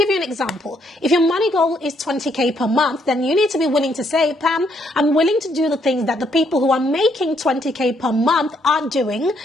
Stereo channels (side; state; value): both; normal; correlation 0.72